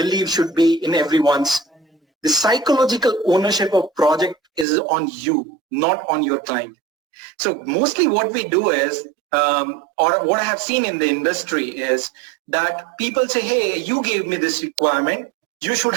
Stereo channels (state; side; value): drops out; left; at 4.7 s